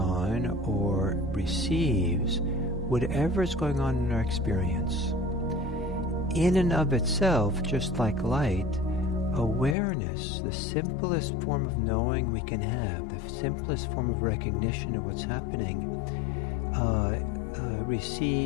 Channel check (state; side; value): drops out; right; at 9.8 s